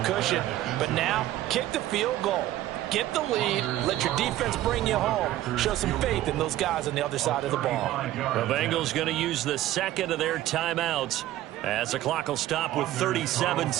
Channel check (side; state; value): left; quieter; 14.3 dB